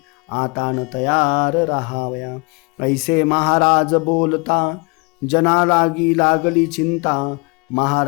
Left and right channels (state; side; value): quieter; right; 30.8 dB